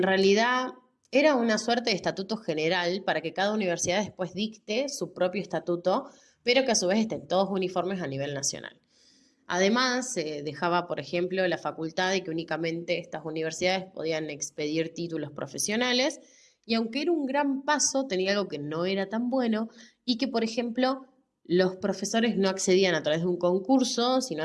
realidad era una suerte de estatuto general para que cada universidad después dicte su propio estatuto, pero que a su vez estén todos uniformes a nivel nacional. Además, se dejaba, por ejemplo, la facultad de que únicamente estas universidades podían expedir títulos profesionales, y aunque era un gran paso, tenía algo que no era tan bueno, y que, por ejemplo, los profesores no accedían a través de un concurso, sino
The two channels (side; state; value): both; identical; correlation 1.00